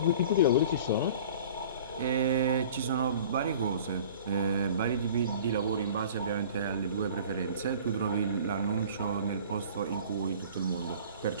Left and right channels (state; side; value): inverted; both; correlation -0.45